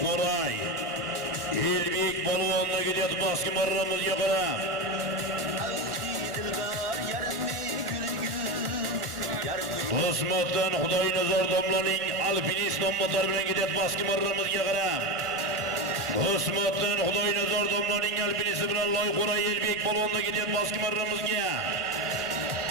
Elbek polvonda ketadi Baskim marramizga qarab. Do'stmatdan Xudoynazor domlaning alpinist nomlari bilan ketadi Baskim marramizga qarab. Do'stmatdan Xudoynazor domlaning alpinisti bilan Loyqo'ray Elbek polvonda ketadi Baskim marramizga.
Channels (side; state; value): left; late; 1.3 ms